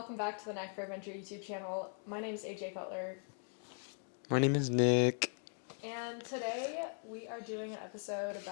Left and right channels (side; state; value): right; silent; 52 dB below the other